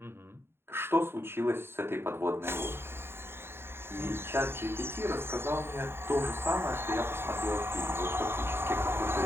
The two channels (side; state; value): left; late; 0.11 ms